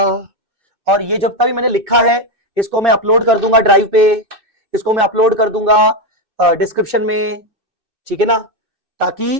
और ये जब तक मैंने लिखा है इसको मैं अपलोड कर दूंगा ड्राइव पे, इसको मैं अपलोड कर दूंगा डिस्क्रिप्शन में, ठीक है ना,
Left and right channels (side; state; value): left; late; 2.6 ms